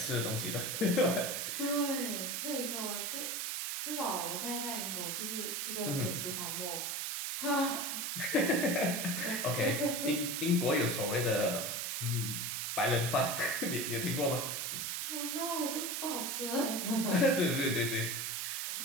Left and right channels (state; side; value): noise; right; hiss, 2 dB below the sound